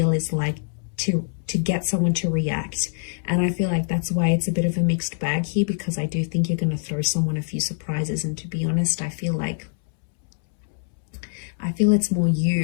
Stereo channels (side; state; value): right; silent; 63 dB below the other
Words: is like to get someone to react. And I feel like that's why it's a bit of a mixed bag here, because I do think you're going to throw someone a few surprises. And to be honest, I feel it's more